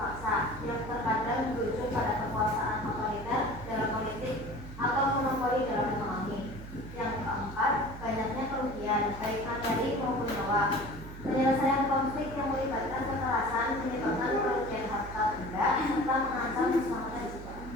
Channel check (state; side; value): noise; right; hum, 12 dB below the sound